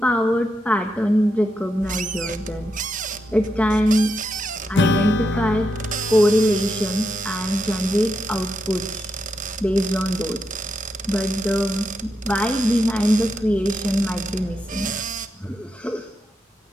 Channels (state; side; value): normal; both; correlation 0.84